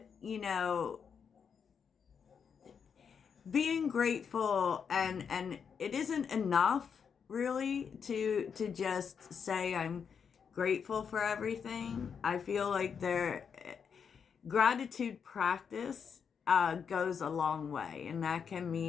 being grateful, and it isn't enough really to just say I'm grateful for everything. I feel like gratitude practice goes a long way, and that can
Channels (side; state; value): right; quieter; 6.7 dB